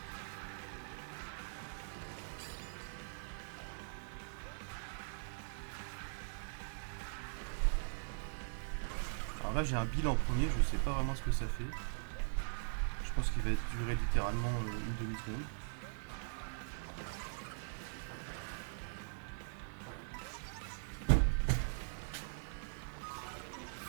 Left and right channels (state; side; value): silent; left; 50 dB below the other